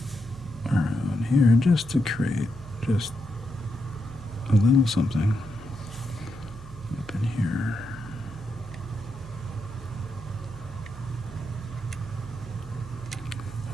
Around here, just to create just a little something up in here.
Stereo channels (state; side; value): noise; right; hum, 15 dB below the sound